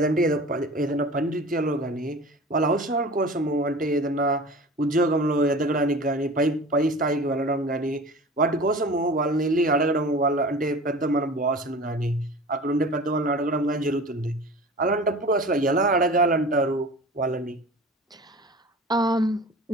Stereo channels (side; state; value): both; normal; correlation 0.38